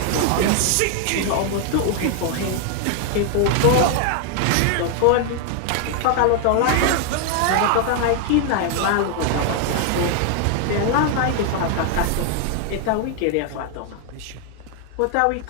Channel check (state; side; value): different; both; correlation 0.00